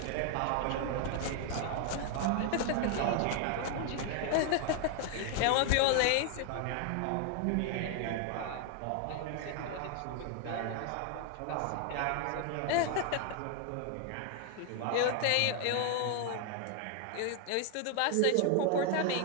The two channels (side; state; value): both; different; correlation 0.00